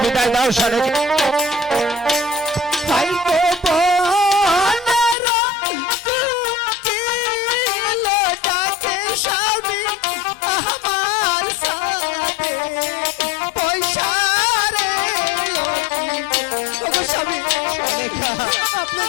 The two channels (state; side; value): drops out; right; at 5.2 s